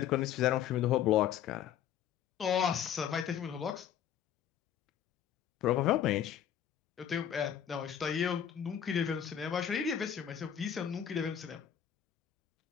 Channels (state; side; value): quieter; right; 9.4 dB